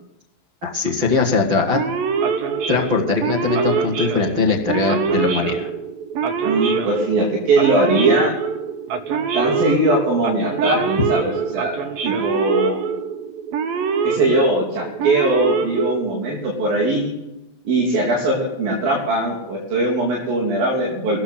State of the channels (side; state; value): left; late; 12 ms